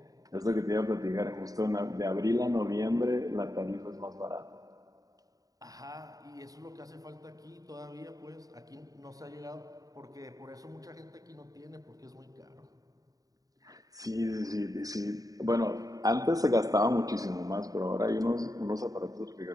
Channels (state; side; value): late; left; 0.18 ms